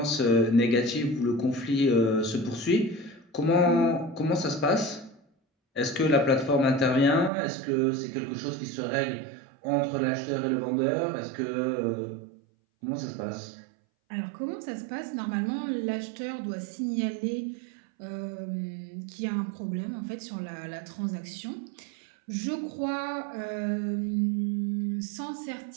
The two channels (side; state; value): left; drops out; at 7.3 s